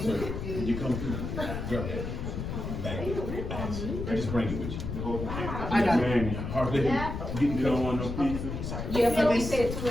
you come through, grab that. Just bring it with you. I got it. Man, Hardly, you don't want no pizza? Yeah, but we said 2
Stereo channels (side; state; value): left; noise; rumble, 5 dB below the sound